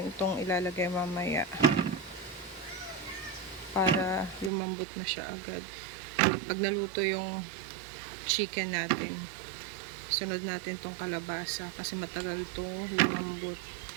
itong ilalagay mamaya. Para lumambot na siya agad. Pag naluto yung chicken natin, sunod natin tong kalabasa. Kasi matagal to lumambot.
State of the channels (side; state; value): left; drops out; at 4.5 s